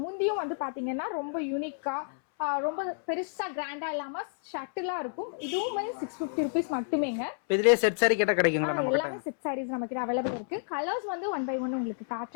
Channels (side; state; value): right; silent; 58 dB below the other